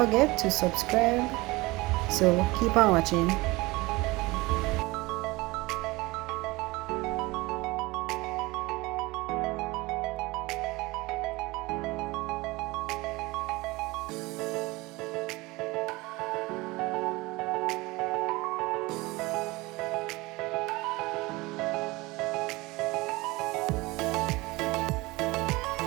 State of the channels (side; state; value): left; quieter; 22.1 dB